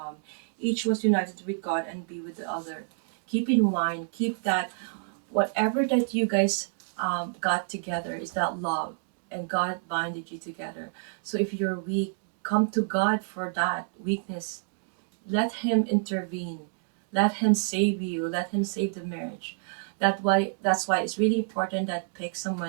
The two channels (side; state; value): left; silent; digital silence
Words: Each was united with God and be with the other. Keep in mind, keep that whatever that you guys got together is that love, and God binded you together. So if you're weak, come to God for that weakness. Let Him intervene. Let Him save you. Let Him save the marriage. That's why it's really important that pick